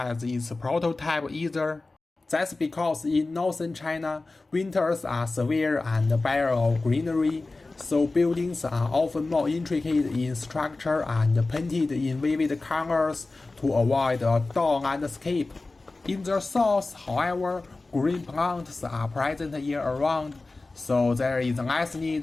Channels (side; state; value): right; quieter; 3.3 dB